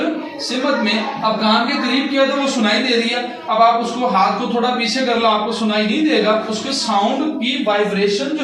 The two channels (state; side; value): identical; both; correlation 1.00